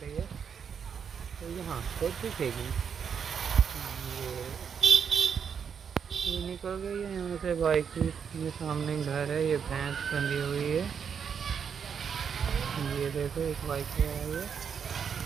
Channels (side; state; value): left; quieter; 7.1 dB